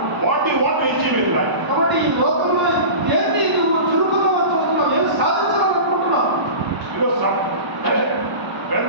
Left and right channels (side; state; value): left; late; 1.0 ms